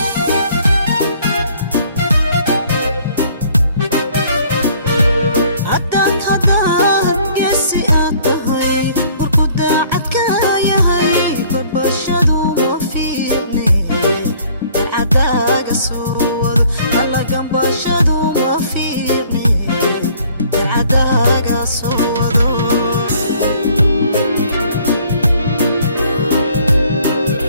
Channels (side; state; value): both; inverted; correlation -0.58